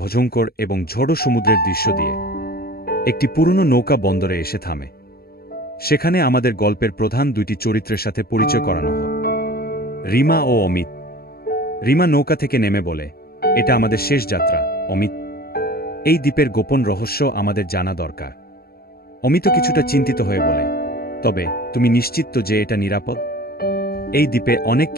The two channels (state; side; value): late; right; 0.45 ms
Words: এবং ঝড়ো সমুদ্রের দৃশ্য দিয়ে। একটি পুরনো নৌকা বন্দরে এসে থামে। সেখানে আমাদের গল্পের প্রধান দুইটি চরিত্রের সাথে পরিচয় করানো হয়, রিমা ও অমিত। রিমা নৌকা থেকে নেমে বলে, এটা আমাদের শেষ যাত্রা অমিত। এই দ্বীপের গোপন রহস্য আমাদের জানা দরকার। অমিত কিছুটা চিন্তিত হয়ে বলে, তবে তুমি নিশ্চিত তো যে এটা নিরাপদ? এই দ্বীপে অনেক